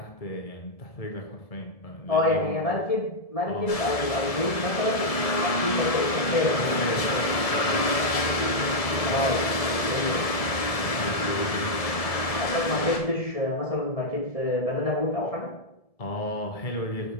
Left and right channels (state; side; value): late; right; 1.7 ms